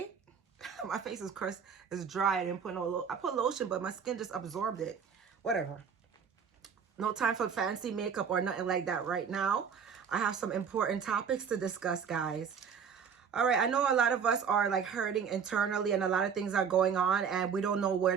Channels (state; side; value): quieter; left; 6.8 dB